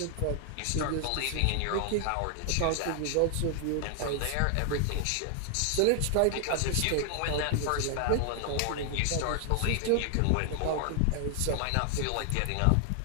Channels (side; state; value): both; different; correlation 0.00